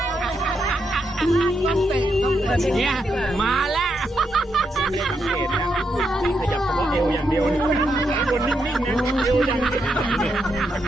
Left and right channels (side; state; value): both; normal; correlation 0.81